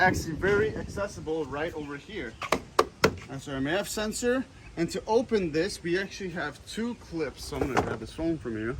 very accessible right over here. That's our MAF sensor. And to open this, we actually have two clips. So I'm gonna grab this phone from you.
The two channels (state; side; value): identical; both; correlation 1.00